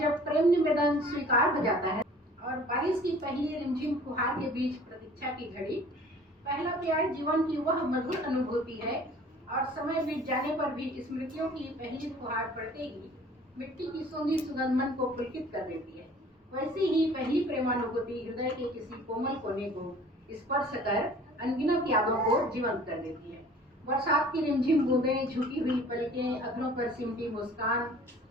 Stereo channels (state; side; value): normal; both; correlation 0.49